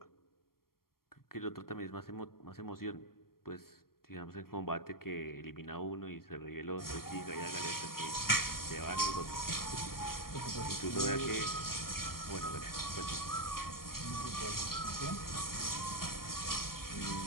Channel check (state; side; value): late; right; 0.93 ms